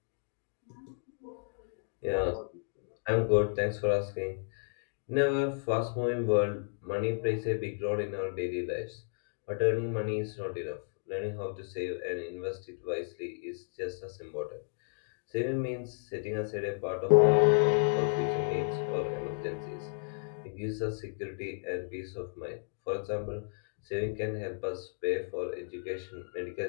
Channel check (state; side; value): silent; right; digital silence